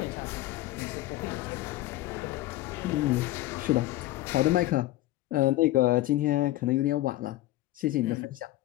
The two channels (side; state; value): right; quieter; 16.3 dB